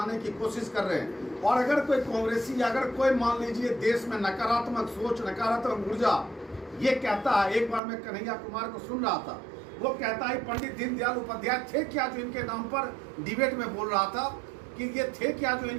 की कोशिश कर रहे हैं। और अगर कोई कांग्रेसी, अगर कोई मान लीजिए देश में नकारात्मक सोच, नकारात्मक ऊर्जा ये कहता है, एक बार मैं कन्हैया कुमार को सुन रहा था, वो कहता है पंडित दीनदयाल उपाध्याय थे क्या जो इनके नाम पर, डिबेट में बोल रहा था कि ये थे क्या जो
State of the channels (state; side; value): drops out; left; at 7.8 s